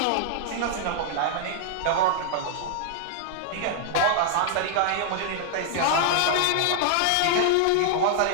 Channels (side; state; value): both; different; correlation 0.00